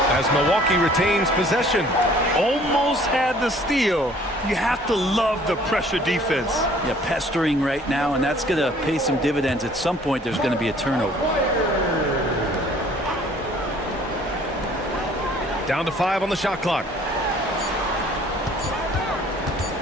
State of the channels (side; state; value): both; normal; correlation 0.55